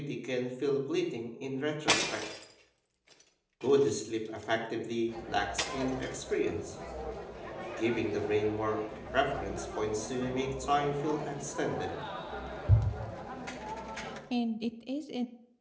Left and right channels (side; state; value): both; identical; correlation 1.00